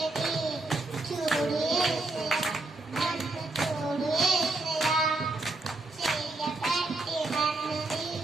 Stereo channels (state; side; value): quieter; left; 3.0 dB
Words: చూడు యేసయ్యా నన్ను చూడు యేసయ్యా చెయ్యబట్టి నన్ను